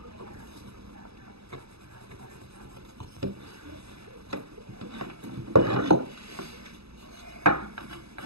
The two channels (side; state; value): left; late; 0.78 ms